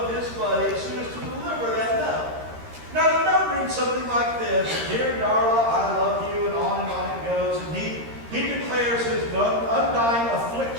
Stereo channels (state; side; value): late; left; 13 ms